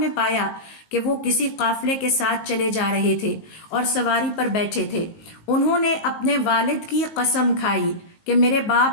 پایا کہ وہ کسی قافلے کے ساتھ چلے جا رہے تھے اور سواری پر بیٹھے تھے. انہوں نے اپنے والد کی قسم کھائی کہ میرے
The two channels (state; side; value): late; right; 19 ms